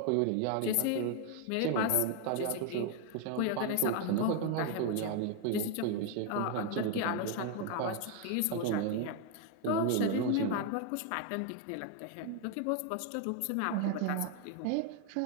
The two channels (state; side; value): different; both; correlation 0.01